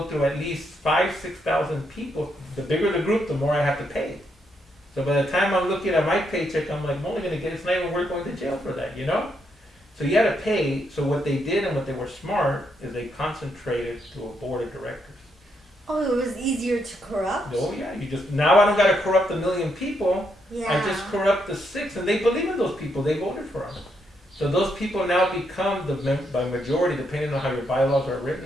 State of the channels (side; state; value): both; normal; correlation 0.78